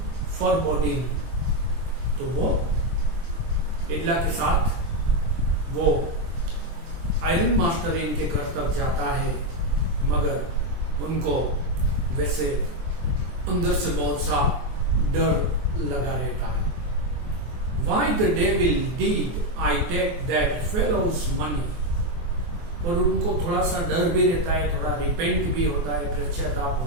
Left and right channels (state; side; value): late; left; 24 ms